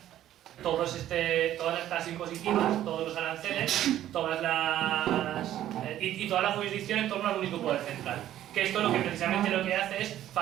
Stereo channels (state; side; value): quieter; left; 12.4 dB